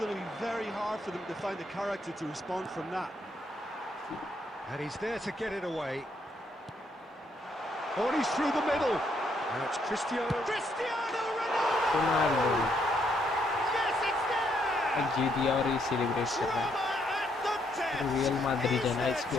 to be very hard for them to find the character to respond from that. And he's there to get it away. Oh, and he's through the middle. Now it's Cristiano Ronaldo! Ronaldo Yes, it's there! जीत दिया और ये celebrate कर रहा है। Drama at the death. Real Madrid Is है ना there इसकी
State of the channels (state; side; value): normal; both; correlation 0.73